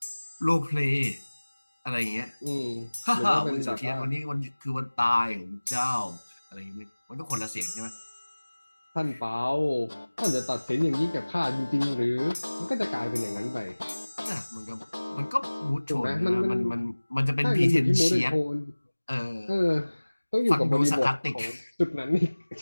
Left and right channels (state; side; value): inverted; both; correlation -1.00